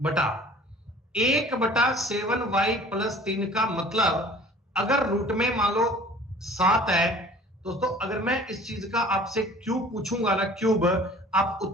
बटा 1/7y प्लस 3 का मतलब, अगर रूट में मान लो 7 है दोस्तों, अगर मैं इस चीज का आपसे क्यूब पूछूंगा ना, क्यूब, आप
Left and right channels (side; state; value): both; normal; correlation 0.49